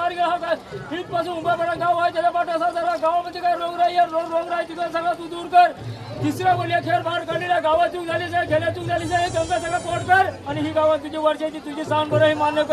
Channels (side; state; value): both; identical; correlation 1.00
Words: गेला इथपासून उभा पडा गाव आहे त्याला पाठ असा झाला. गावामध्ये काय रोगराई रोगराई तिथं सगळं तू दूर कर. तिसऱ्या बोलल्या खेळ बाहेर काढलेला गावात चूक झालीच आहे, खेळ्या चूक झालीच आहे. गंगा सगळं पोट कर आणि ही गावात तुझी वर्षाची तुझी सांग बरं हे मान्य